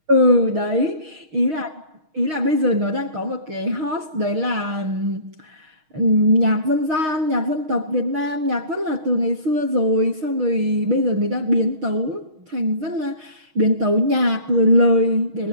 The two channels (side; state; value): left; late; 6.4 ms